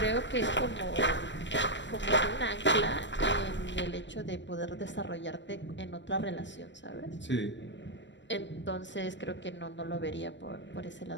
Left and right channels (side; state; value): right; late; 0.53 ms